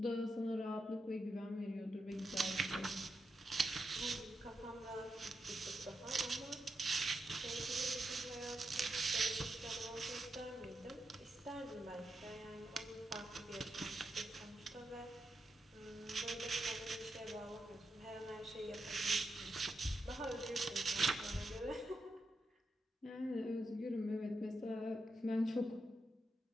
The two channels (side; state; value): both; normal; correlation 0.85